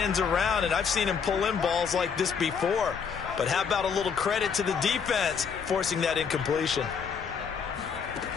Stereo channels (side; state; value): right; quieter; 6.4 dB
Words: around, and I've seen him pull in balls like this before. But how about a little credit to the defense forcing that incompletion?